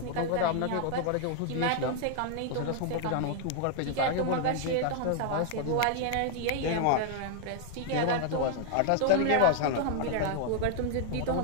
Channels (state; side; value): different; both; correlation 0.00